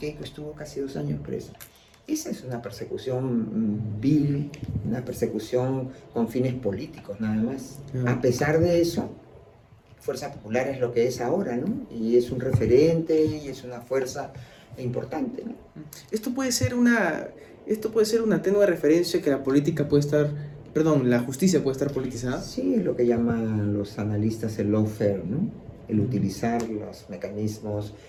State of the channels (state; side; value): identical; both; correlation 1.00